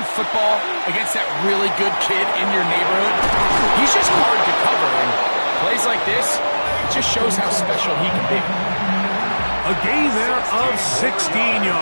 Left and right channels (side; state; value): both; inverted; correlation -1.00